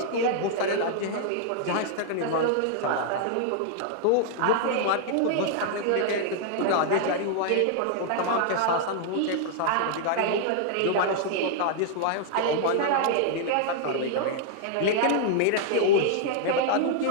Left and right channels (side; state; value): both; different; correlation -0.01